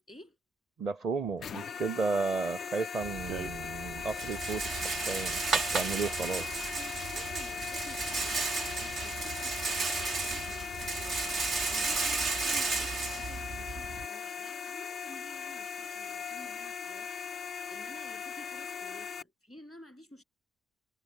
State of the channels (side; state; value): both; normal; correlation 0.73